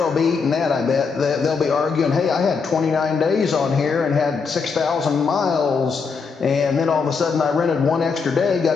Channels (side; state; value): right; quieter; 5.2 dB